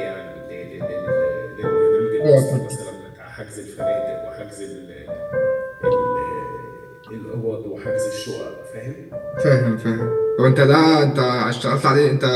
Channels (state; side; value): identical; both; correlation 1.00